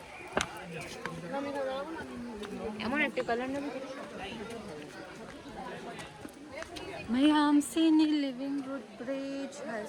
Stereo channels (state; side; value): identical; both; correlation 1.00